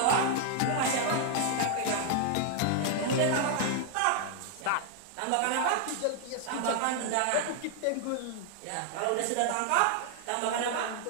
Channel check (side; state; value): both; different; correlation 0.00